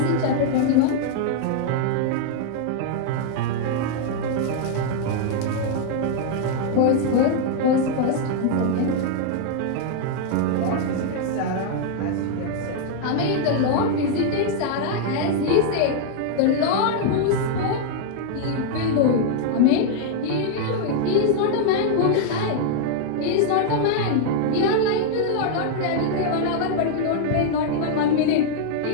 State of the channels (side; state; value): both; different; correlation 0.00